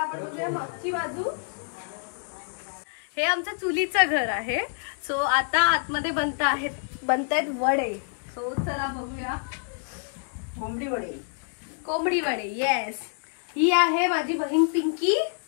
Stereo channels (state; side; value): silent; right; 60 dB below the other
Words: आपण बघूया मागची बाजू. हे आमचं चुलीचं घर आहे. सो आता आतमध्ये बनतायत वडे. सो चला बघूया. कोंबडी वडे. येस. ही आहे माझी बहीण पिंकी